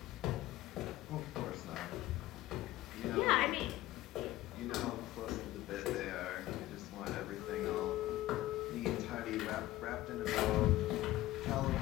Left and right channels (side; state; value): right; quieter; 16.2 dB